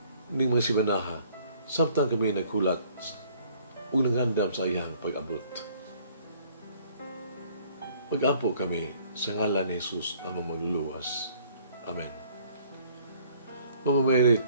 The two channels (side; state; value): both; inverted; correlation -0.58